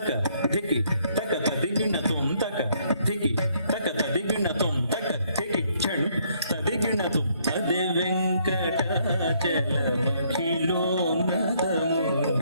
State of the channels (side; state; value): both; inverted; correlation -0.68